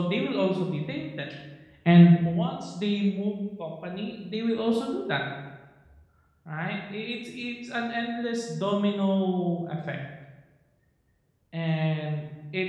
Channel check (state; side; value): identical; both; correlation 1.00